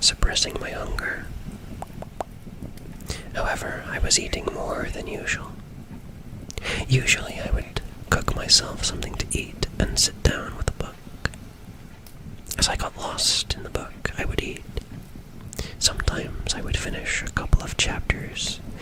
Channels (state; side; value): identical; both; correlation 1.00